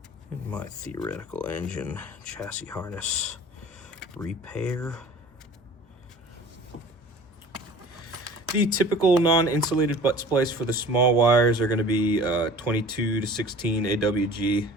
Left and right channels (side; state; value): both; normal; correlation 0.43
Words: In my theoretical engine chassis harness repair. The typical non-insulated butt splice for the small wires are going to be 22 to 16 AWG,